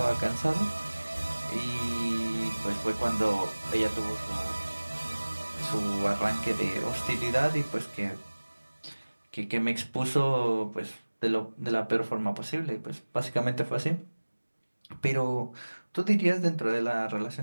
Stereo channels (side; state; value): both; inverted; correlation -1.00